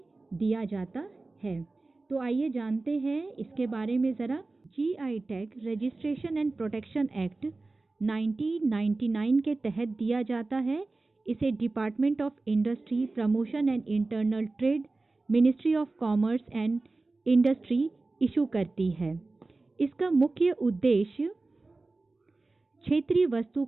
दिया जाता है। तो आइए जानते हैं इसके बारे में ज़रा। GI tag registration and protection act 1999 के तहत दिया जाता है। इसे department of industry, promotion and internal trade, ministry of commerce and industry issue करती है। इसका मुख्य उद्देश्य क्षेत्रीय वस्तु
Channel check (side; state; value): left; quieter; 3.4 dB